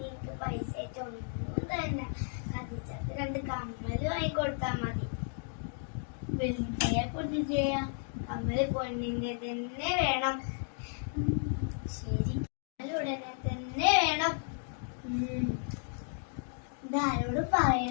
പൈസ ആയിട്ട് ഒന്നും തന്നെ കത്തിച്ചത് 2 കമ്മല് വാങ്ങിക്കൊടുത്താ മതി. വെളുത്തയാ പൊന്നിന്റെയാ? കമ്മല് പൊന്നിന്റെ തന്നെ വേണം. ശരി, ഉടനെ തന്നെ വേണം. ഇതാരോട്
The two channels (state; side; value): silent; right; 55 dB below the other